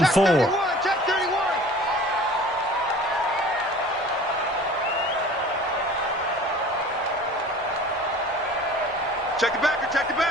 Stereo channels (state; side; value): normal; both; correlation 0.44